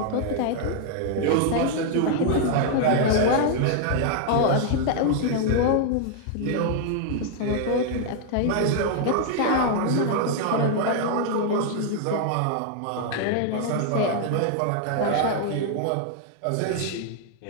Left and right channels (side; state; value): both; different; correlation 0.00